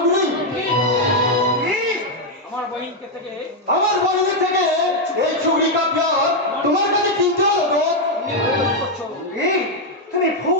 আমার বহিনকে থেকে আমার বন্ধু থেকে এই চুগলি का प्यार তোমার কাছে কিনতে হলো তো? তুমি ভুল করছো এই, তুমি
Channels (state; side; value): normal; both; correlation 0.01